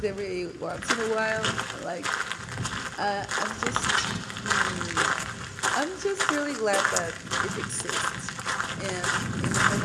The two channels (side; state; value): both; identical; correlation 1.00